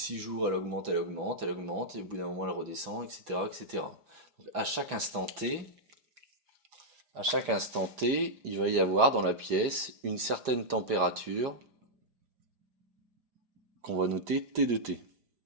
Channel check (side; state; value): left; late; 4.9 ms